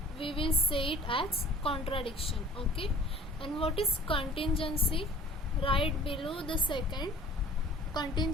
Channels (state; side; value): normal; both; correlation 0.50